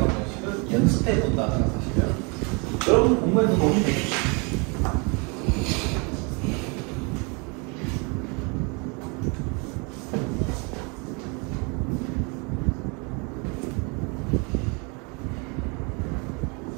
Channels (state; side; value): quieter; left; 32.0 dB